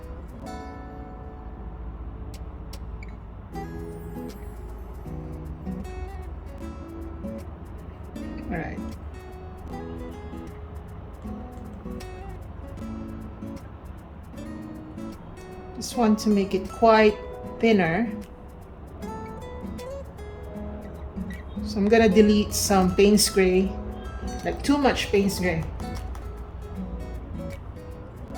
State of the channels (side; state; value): both; identical; correlation 1.00